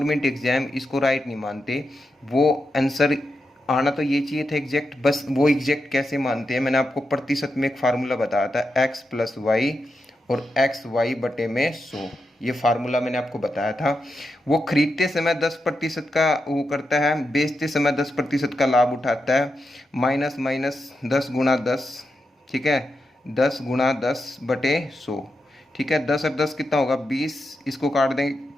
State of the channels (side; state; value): both; normal; correlation 0.87